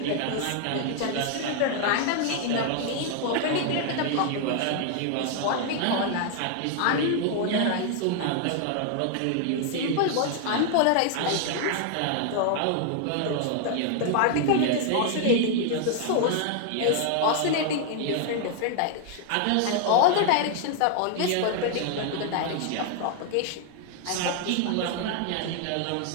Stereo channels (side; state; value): both; different; correlation 0.00